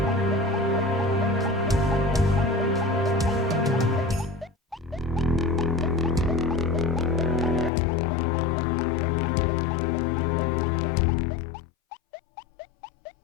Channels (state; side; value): drops out; right; at 7.7 s